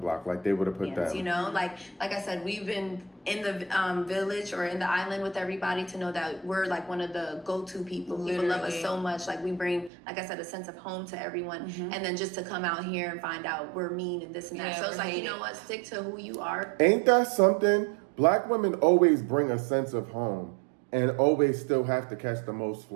like they would have put Yes, that. you know, like I said, we've been in the village or in the island with everybody to know that we're like one of the go-to people. People love us Literally. so much. Like we bring, like I said, a sense of home to everyone. And then just to come out here and find out we're mean and this and that. Yeah, So it's we're like, you hated. know what? Stick to who you are. Ain't that something? Black women always bring a sense of home and always still have to catch the most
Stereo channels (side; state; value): left; drops out; at 9.9 s